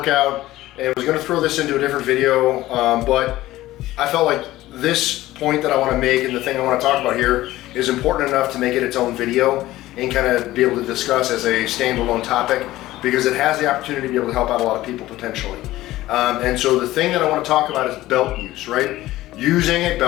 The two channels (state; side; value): quieter; right; 16.2 dB